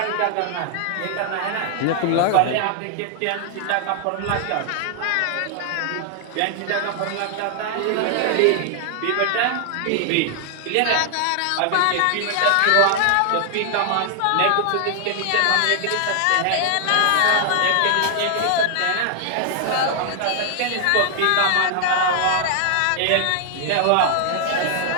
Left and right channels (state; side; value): different; both; correlation 0.00